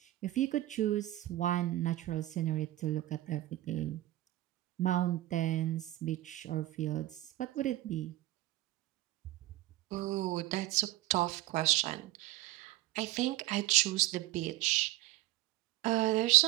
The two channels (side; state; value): left; quieter; 16.3 dB